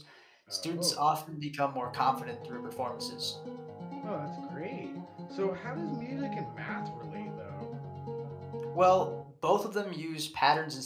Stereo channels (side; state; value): both; identical; correlation 1.00